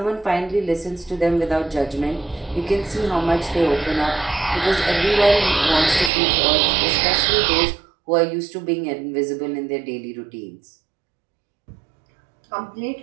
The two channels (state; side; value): drops out; left; at 6.1 s